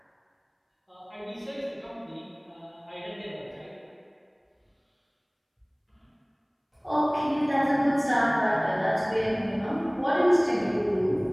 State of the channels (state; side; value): identical; both; correlation 1.00